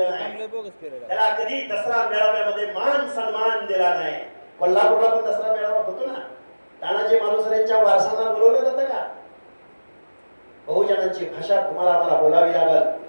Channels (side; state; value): both; inverted; correlation -1.00